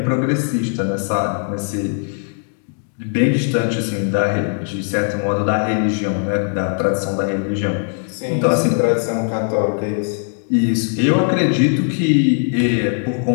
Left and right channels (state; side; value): silent; right; 57 dB below the other